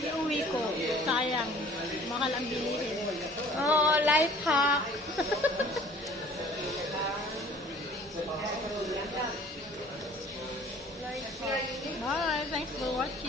ko. Sayang. Mahal ang bilihin. Oh, life hack. Bye. Thanks for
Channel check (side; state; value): both; normal; correlation 0.51